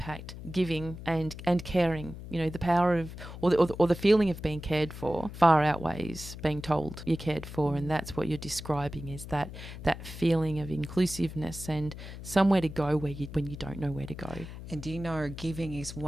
Giving and caring. The power of or the feeling of being cared for far outweighs being told you're cared for, and that's what you're describing, is that feeling of inclusiveness and somewhere to go when you don't know where to go. And do you know, giving is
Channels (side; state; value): left; noise; hum, 12 dB below the sound